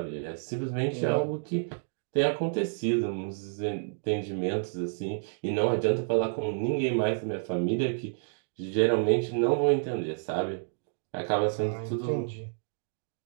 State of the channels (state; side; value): silent; left; digital silence